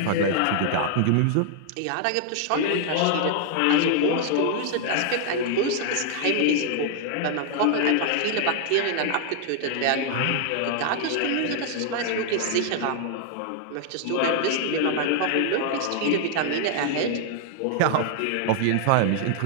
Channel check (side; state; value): both; different; correlation 0.00